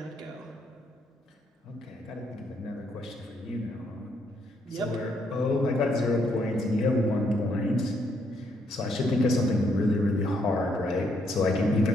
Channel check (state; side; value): normal; both; correlation 0.73